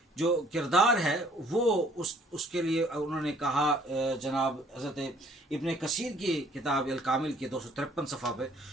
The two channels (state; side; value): normal; both; correlation 0.59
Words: जो किरदार है वो उसके लिए उन्होंने कहा, जनाब हज़रत इब्न कसीर की किताब अल कामिल के 253 सफ़ा पे,